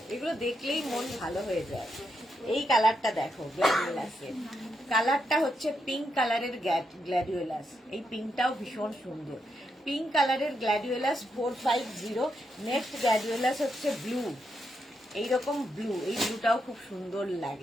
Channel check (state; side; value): normal; both; correlation 0.82